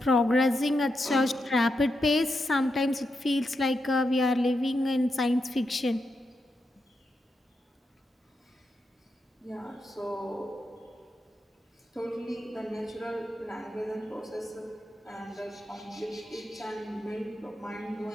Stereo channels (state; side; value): normal; both; correlation 0.85